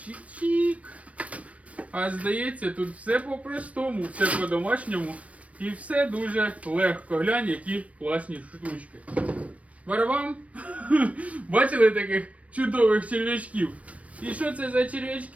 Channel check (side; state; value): left; late; 0.065 ms